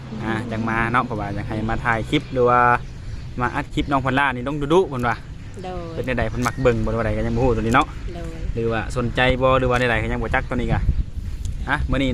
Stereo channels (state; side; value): identical; both; correlation 1.00